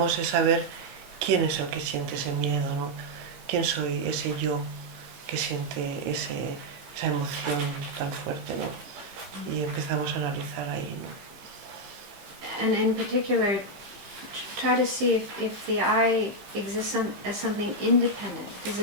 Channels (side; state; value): left; late; 15 ms